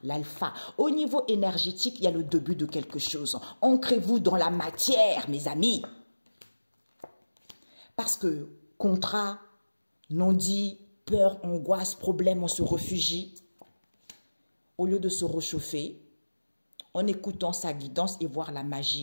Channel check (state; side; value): inverted; both; correlation -1.00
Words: l'alpha. Au niveau énergétique, il y a le début de quelque chose. Ancrez-vous dans la matière, mes amis. Parce que contrat, non-dit, peur, angoisse, problème, on se réfugie. au lieu de se réchauffer, en écoutant sa guidance et voir la